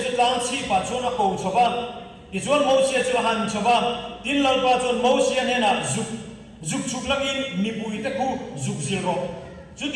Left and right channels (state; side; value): identical; both; correlation 1.00